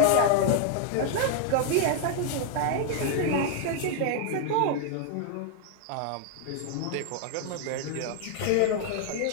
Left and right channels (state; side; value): different; both; correlation 0.00